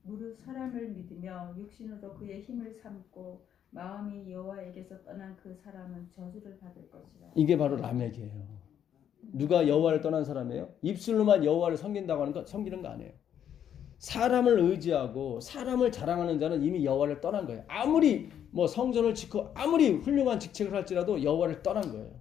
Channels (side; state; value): right; quieter; 9.4 dB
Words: 무릇 사람을 믿으며 육신으로 그의 힘을 삼고 마음이 여호와에게서 떠난 그 사람은 저주를 받을 것이라. 이게 바로 라멕이에요. 누가 여호와를 떠난 사람이에요? 입술로만 여호와를 섬기는 거 아니에요. 사람을 의지하고 사람을 자랑하는 자는 이미 여호와를 떠난 거예요. 아무리 뭐 성전을 짓고 아무리 훌륭한 직책을 할지라도 여호와를 떠난 거예요.